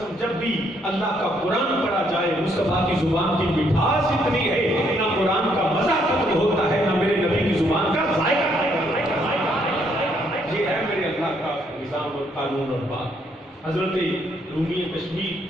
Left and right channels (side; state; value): both; normal; correlation 0.71